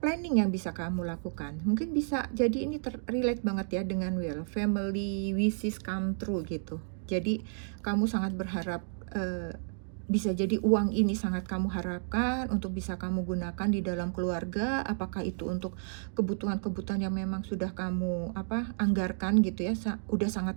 planning yang bisa kamu lakukan. Mungkin bisa jadi ini relate banget ya dengan family wishes come true gitu. Jadi kamu sangat berharap, bisa jadi uang ini sangat kamu harapkan untuk bisa kamu gunakan di dalam keluarga, apakah itu untuk kebutuhan-kebutuhan yang memang sudah kamu anggarkan gitu ya, udah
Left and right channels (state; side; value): silent; left; digital silence